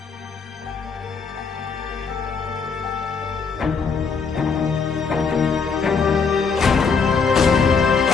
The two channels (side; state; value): right; quieter; 5.3 dB